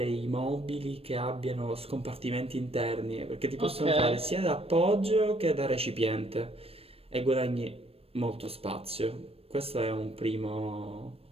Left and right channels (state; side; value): late; left; 0.28 ms